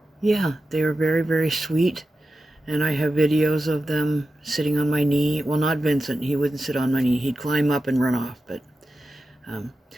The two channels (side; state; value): both; normal; correlation 0.92